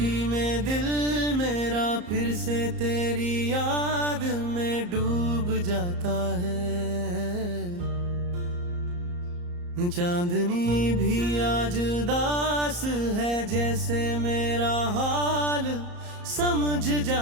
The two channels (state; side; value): late; left; 34 ms